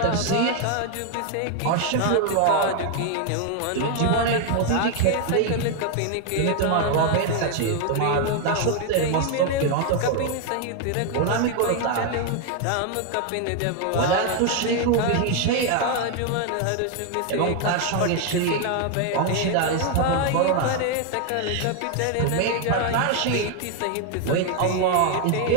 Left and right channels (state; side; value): different; both; correlation 0.01